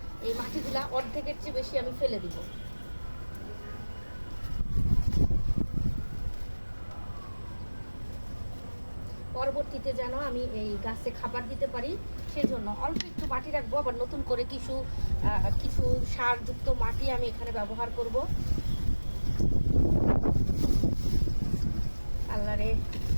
এই মাটিগুলা অর্ধেকের চেয়ে বেশি আমি ফেলে দিব। পরবর্তীতে যেন আমি এই গাছে খাবার দিতে পারি, সেজন্য অল্প একটু মাটি রাখবো। আবার নতুন করে কিছু সারযুক্ত মাটি আমি এখানে ব্যবহার করব। আল্লাহ রে,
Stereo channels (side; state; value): both; inverted; correlation -1.00